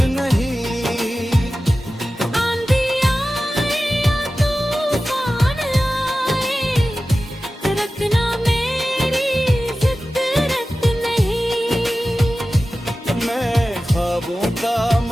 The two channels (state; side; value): normal; both; correlation 0.95